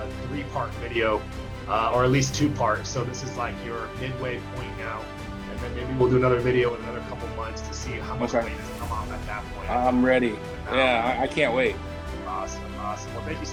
3-part video, or at least 2 parts. So this is like your midway point now, and then maybe we'll do another video in another couple months to see how much weight has come off at that point. I'm ready. Yeah, I can't wait. Awesome. Well, thank you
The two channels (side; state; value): both; identical; correlation 1.00